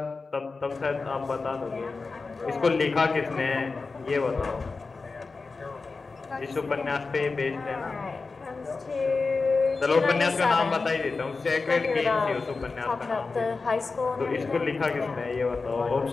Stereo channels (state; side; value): quieter; right; 4.1 dB